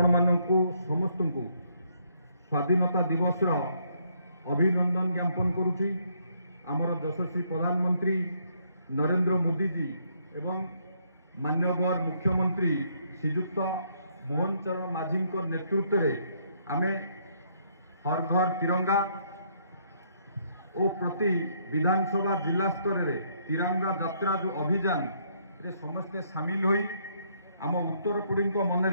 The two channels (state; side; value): inverted; both; correlation -0.70